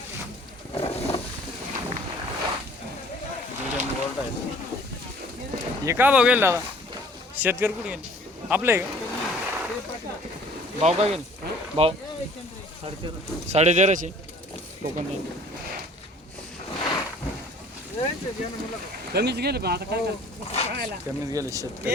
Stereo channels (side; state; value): both; normal; correlation 0.52